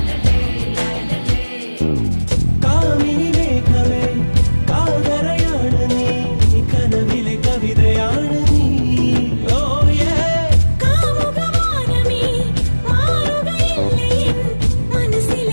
കാമിനി മേഘമേ കാതരയാണ് നീ കനവിലെ കവിതയാണ് നീ ഓ യേ കാമുകവാനമേ മാറുകയില്ലേ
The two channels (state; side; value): inverted; both; correlation -1.00